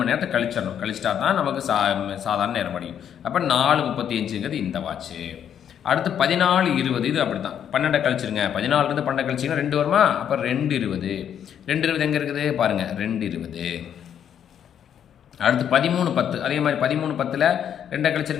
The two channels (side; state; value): right; quieter; 9.1 dB